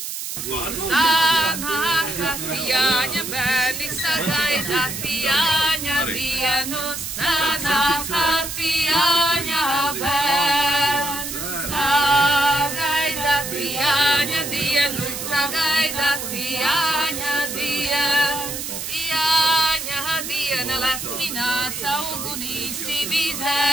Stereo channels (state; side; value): noise; right; hiss, 6 dB below the sound